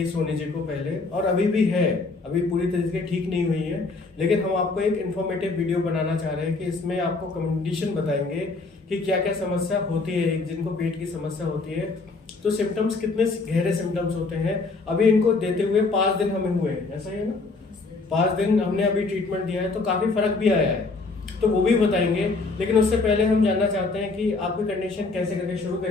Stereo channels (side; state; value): right; quieter; 3.8 dB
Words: सोनी जी को पहले और अभी भी है, अभी पूरी तरीके से ठीक नहीं हुई है, लेकिन हम आपको एक इन्फॉर्मेटिव वीडियो बनाना चाह रहे हैं कि इसमें आपको कंडीशन बताएंगे कि क्या क्या समस्या होती है। जिनको पेट की समस्या होती है तो सिम्टम्स कितने गहरे सिम्टम्स होते हैं। अभी इनको देते हुए 5 दिन हमें हुए हैं, ऐसा ही है ना? 5 दिन हमने अभी ट्रीटमेंट दिया है तो काफी फर्क भी आया है, तो वो भी बताएंगे। लेकिन उससे पहले हम जानना चाहते हैं कि आपकी कंडीशन कैसे करके शुरू